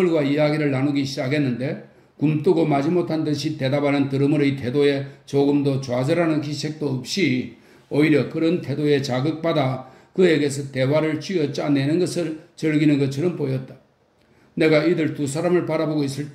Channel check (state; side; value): identical; both; correlation 1.00